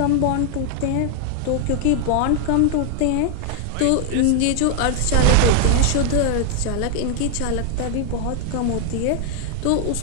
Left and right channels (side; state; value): both; different; correlation 0.00